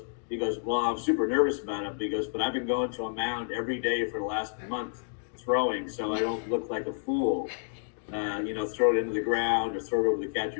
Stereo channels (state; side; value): silent; right; digital silence